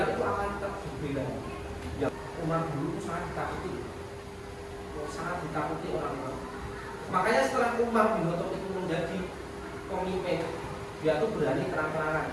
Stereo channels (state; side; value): identical; both; correlation 1.00